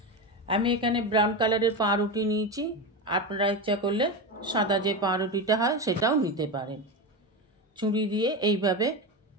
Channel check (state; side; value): normal; both; correlation 0.18